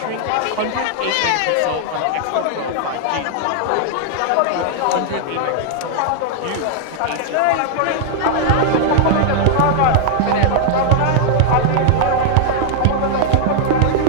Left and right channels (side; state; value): both; different; correlation -0.01